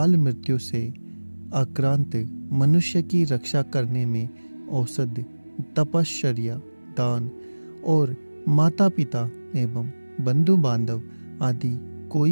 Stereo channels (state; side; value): inverted; both; correlation -1.00